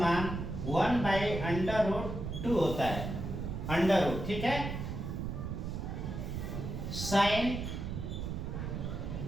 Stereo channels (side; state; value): right; noise; rumble, 4 dB below the sound